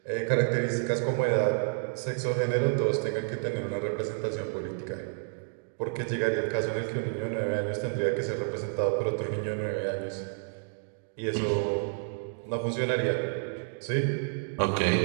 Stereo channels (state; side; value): silent; left; digital silence